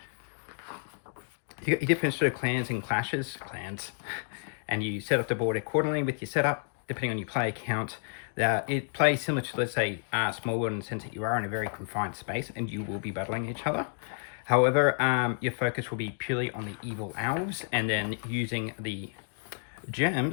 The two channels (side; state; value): right; silent; digital silence